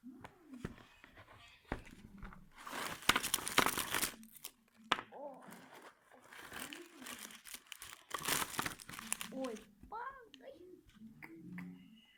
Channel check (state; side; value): identical; both; correlation 1.00